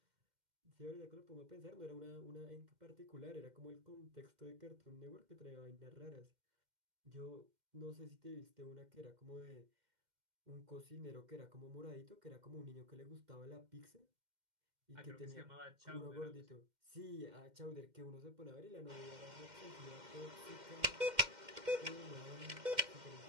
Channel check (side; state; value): left; late; 2.1 ms